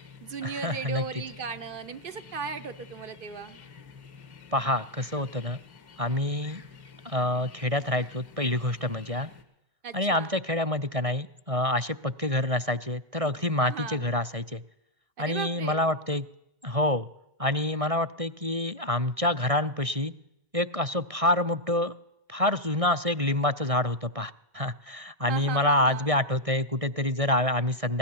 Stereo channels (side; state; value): left; late; 1.6 ms